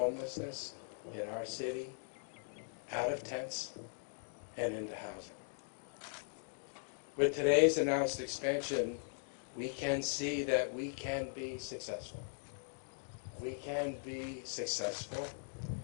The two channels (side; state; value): right; silent; digital silence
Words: in our city out of tents and into housing. With today's announced expansion, we can see that we can be successful. We can be successful